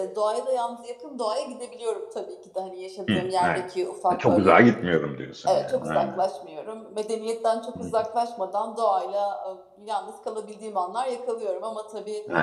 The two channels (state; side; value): identical; both; correlation 1.00